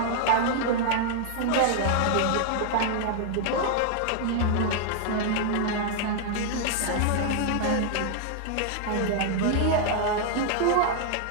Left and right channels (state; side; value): different; both; correlation 0.00